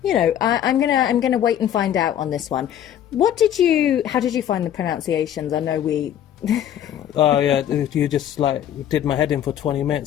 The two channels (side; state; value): right; quieter; 10.5 dB